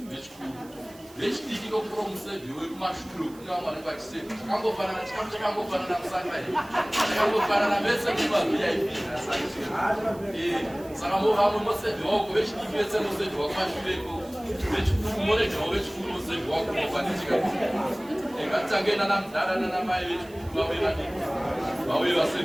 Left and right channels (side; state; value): right; noise; hiss, 24 dB below the sound